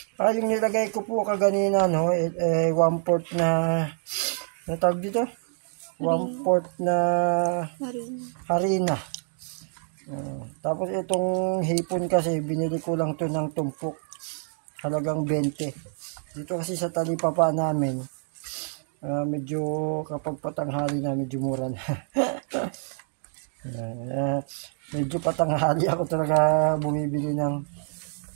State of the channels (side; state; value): left; silent; digital silence